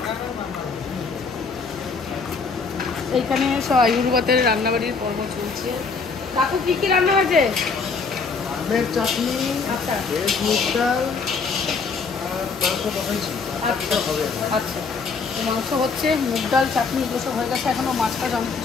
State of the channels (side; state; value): right; quieter; 4.8 dB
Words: এইখানে সব আইবুড়ো ভাতের রান্নাবাড়ির পর্ব চলছে। কাকু কি কি রান্না হয়েছে? আমের চাটনি, আচ্ছা ভেজ মুগ ডাল আর মাংস বসাইছি। আচ্ছা আচ্ছা, তো মাংস হচ্ছে, মুগ ডাল, চাটনি এগুলো সব হয়ে গেছে। এখনও মাছটা অনেক